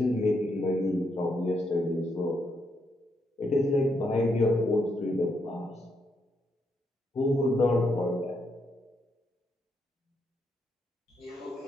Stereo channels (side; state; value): both; normal; correlation 0.79